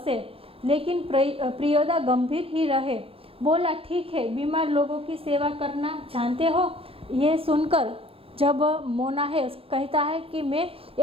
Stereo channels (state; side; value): late; left; 0.27 ms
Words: लेकिन प्रियोदा गंभीर ही रहे। बोला ठीक है, बीमार लोगों की सेवा करना जानते हो? ये सुनकर जब मोना है कहता है कि मैं